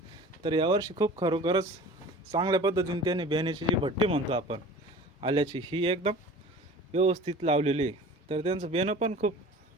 तर यावर्षी खूप खरोखरच चांगल्या पद्धतीने त्यांनी बियाण्याची जी भट्टी म्हणतो आपण आल्याची ही एकदम व्यवस्थित लावलेली आहे. तर त्यांचं बियाणं पण खूप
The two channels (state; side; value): normal; both; correlation 0.41